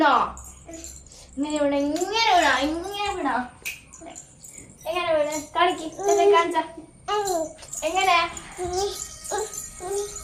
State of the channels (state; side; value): identical; both; correlation 1.00